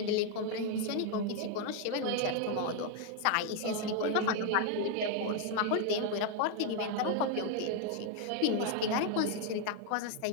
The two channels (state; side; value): different; both; correlation 0.00